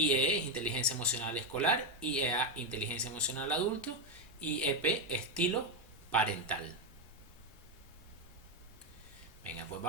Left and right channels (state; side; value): normal; both; correlation 0.06